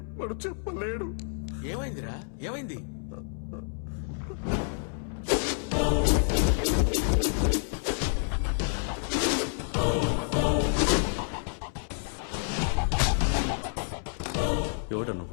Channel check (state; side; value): silent; right; 59 dB below the other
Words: వాడు చెప్పలేడు. ఏమైందిరా ఏమైంది? ఎవడ